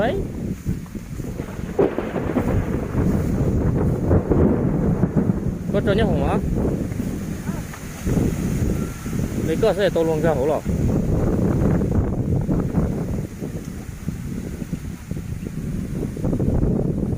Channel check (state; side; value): identical; both; correlation 1.00